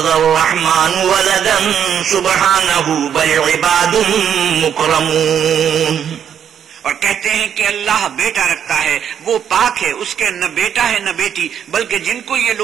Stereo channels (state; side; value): quieter; left; 8.6 dB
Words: الرحمن ولدا سبحانه بل عباد مكرمون. اور کہتے ہیں کہ اللہ بیٹا رکھتا ہے، وہ پاک ہے، اس کے نہ بیٹا ہے نہ بیٹی، بلکہ جن کو یہ